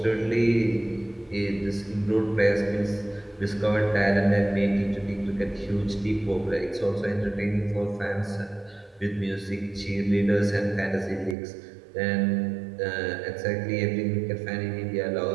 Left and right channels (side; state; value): left; drops out; at 11.4 s